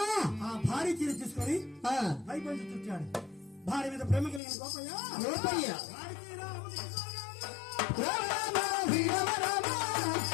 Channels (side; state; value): right; drops out; at 4.4 s